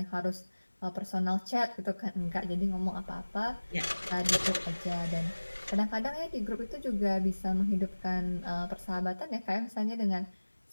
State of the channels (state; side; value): inverted; both; correlation -1.00